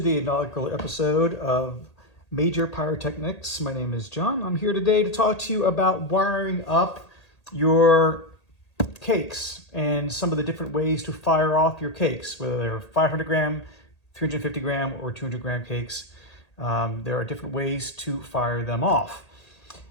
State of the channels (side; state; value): right; late; 1.8 ms